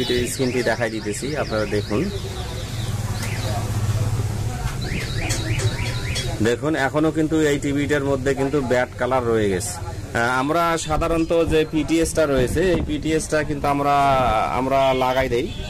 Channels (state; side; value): identical; both; correlation 1.00